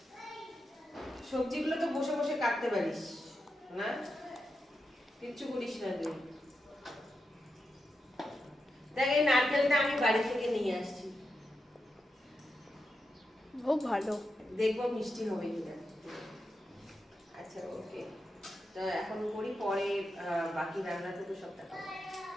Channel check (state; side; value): normal; both; correlation 0.87